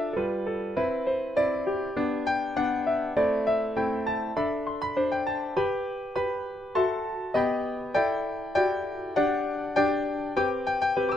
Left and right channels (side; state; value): both; normal; correlation 0.80